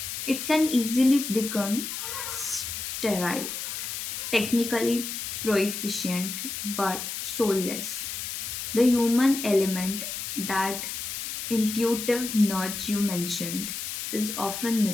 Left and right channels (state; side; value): noise; left; hiss, 5 dB below the sound